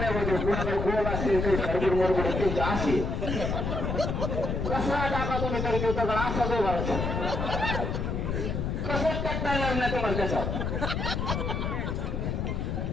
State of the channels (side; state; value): left; noise; rumble, 1 dB below the sound